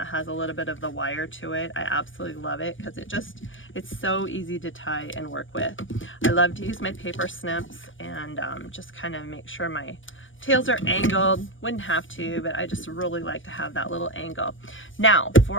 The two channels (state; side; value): late; right; 0.57 ms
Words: has a little bit of the wire to it. I absolutely love it because it's so easy to tie and work with. I love to use my paper snips and just kind of make sure my tails are angled. Wouldn't have to, but I just really like to have that little angle. Now